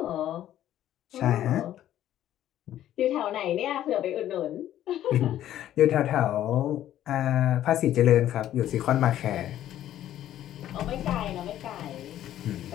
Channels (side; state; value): right; quieter; 12.2 dB